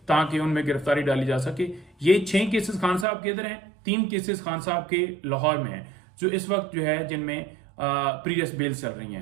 ताकि उनमें गिरफ्तारी डाली जा सके। ये 6 केसेस खान साहब के इधर हैं, 3 केसेस खान साहब के लाहौर में हैं जो इस वक्त जो है जिनमें प्रीवियस बेल्स चल रही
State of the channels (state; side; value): drops out; left; at 3.1 s